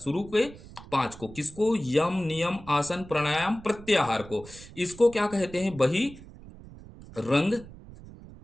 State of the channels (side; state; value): right; noise; rumble, 17 dB below the sound